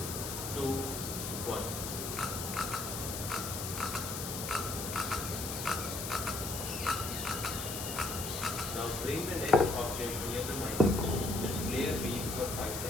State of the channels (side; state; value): left; noise; hiss, 5 dB below the sound